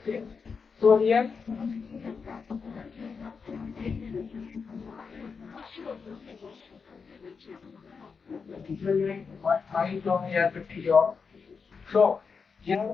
So here, what I from here 50 job. So,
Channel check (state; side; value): quieter; right; 5.4 dB